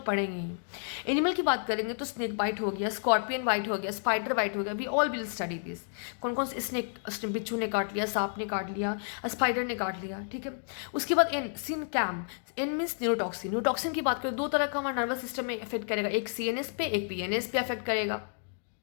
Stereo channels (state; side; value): silent; right; digital silence